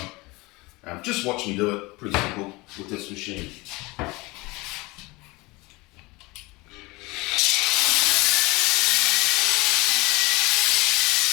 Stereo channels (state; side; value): quieter; right; 23.4 dB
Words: just watch me do it, pretty simple with this machine.